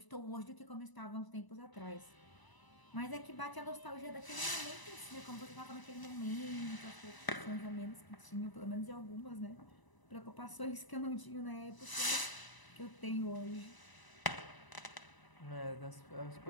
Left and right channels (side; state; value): right; late; 1.0 ms